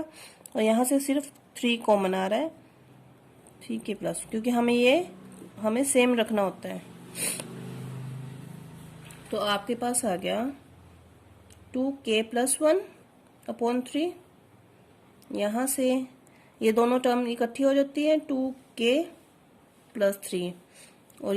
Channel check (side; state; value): both; identical; correlation 1.00